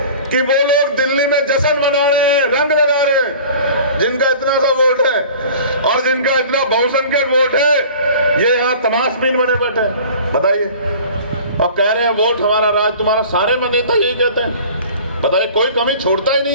कि वो लोग दिल्ली में जश्न मना रहे हैं, रंग लगा रहे हैं। जिनका इतना सा वोट है और जिनका इतना बहुसंख्यक वोट है ये यहाँ तमाशबीन बने बैठे हैं बताइए, और कह रहे हैं वोट हमारा राज तुम्हारा। सारे नेता यही कहते हैं बताइए, कोई कमी छोड़ता ही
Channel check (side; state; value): both; inverted; correlation -0.43